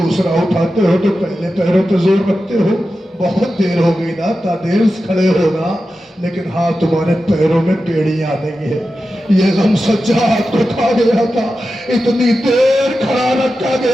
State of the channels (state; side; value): normal; both; correlation 0.92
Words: اٹھاتے ہو تو پہلے پیروں پہ زور رکھتے ہو. بہت دیر ہو گئی نا، تا دیر سے کھڑے ہونا، لیکن ہاں تمہارے پیروں میں بیڑیاں آ گئی ہے. یہ غم سجاد کو کھا گیا تھا، اتنی دیر کھڑا رکھا